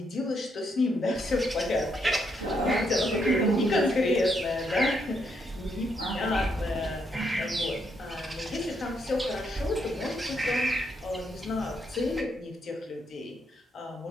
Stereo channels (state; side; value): normal; both; correlation 0.77